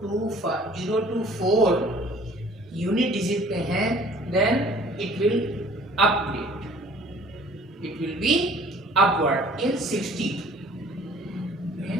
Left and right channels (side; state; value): both; normal; correlation 0.52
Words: to 4 unit digit पे हैं, then it will update. It will be upward in 60.